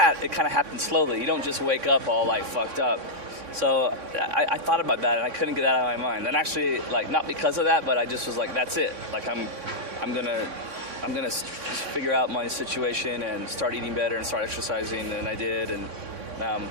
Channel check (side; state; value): left; late; 3.6 ms